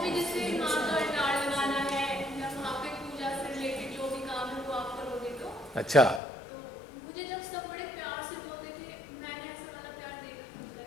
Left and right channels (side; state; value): right; drops out; at 6.2 s